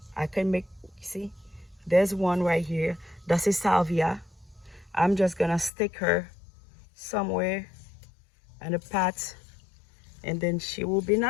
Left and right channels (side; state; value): right; drops out; at 5.7 s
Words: I can make, see, there's one right here. That's a salvia. I'm just gonna stick her somewhere in a pot, and then she will be